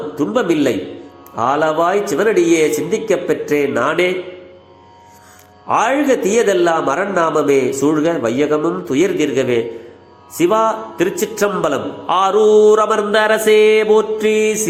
துன்பமில்லை, ஆளவாய் சிவனடியே சிந்திக்கப் பெற்றேன் நானே. ஆழ்க தீயதெல்லாம் அரண்நாமமே சூழ்க, வையகமும் துயர் தீர்கவே. சிவா திருச்சிற்றம்பலம். ஆரூர் அமர்ந்த அரசே போற்றி,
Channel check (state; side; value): identical; both; correlation 1.00